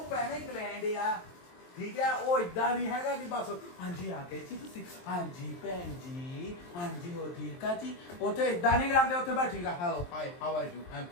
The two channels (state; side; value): late; right; 23 ms